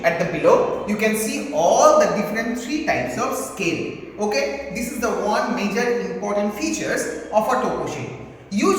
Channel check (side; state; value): both; identical; correlation 1.00